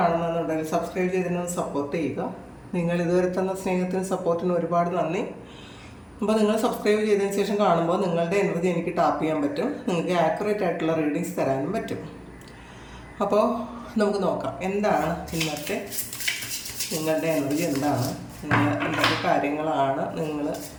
സബ്സ്ക്രൈബ് ചെയ്തതിന് സപ്പോർട്ട് ചെയ്യുക. നിങ്ങൾ ഇതുവരെ തന്ന സ്നേഹത്തിനും സപ്പോർട്ടിനും ഒരുപാട് നന്ദി. അപ്പോൾ നിങ്ങൾ സബ്സ്ക്രൈബ് ചെയ്തതിന് ശേഷം കാണുമ്പോൾ നിങ്ങളുടെ എനർജി എനിക്ക് ടാപ്പ് ചെയ്യാൻ പറ്റും. നിങ്ങൾക്ക് ആക്യുറേറ്റ് ആയിട്ടുള്ള റീഡിങ്സ് തരാനും പറ്റും. അപ്പോൾ നമുക്ക് നോക്കാം എന്താണ് ഇന്നത്തെ നിങ്ങളുടെ എനർജി, എന്താണ് നിങ്ങൾ എന്തൊക്കെ കാര്യങ്ങളാണ് നിങ്ങൾ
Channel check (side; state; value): both; identical; correlation 1.00